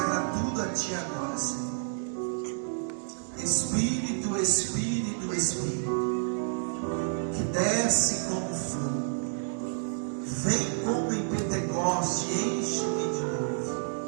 tudo a Ti agora, Senhor. Espírito, Espírito, Espírito, que desce como fogo, vem como em Pentecoste, enche-me de novo.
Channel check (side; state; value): left; silent; digital silence